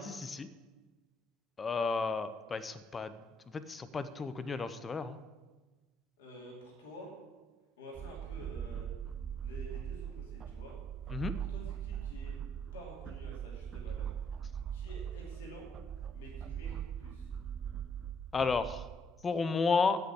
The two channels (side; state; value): both; normal; correlation 0.73